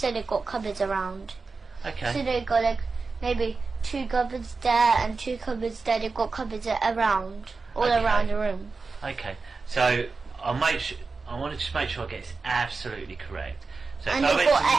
they got cupboards around. Okay. So they got maybe 2 cupboards there and 2 cupboards there. They've got cupboards around, all around the room. Okay. So I want to just make sure I get this absolutely correct. So And they've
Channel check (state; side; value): quieter; left; 4.3 dB